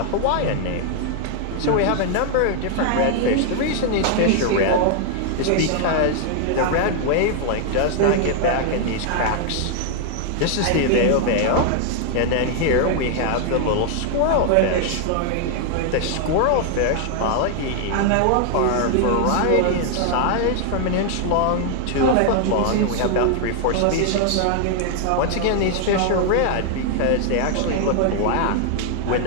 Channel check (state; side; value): different; both; correlation 0.00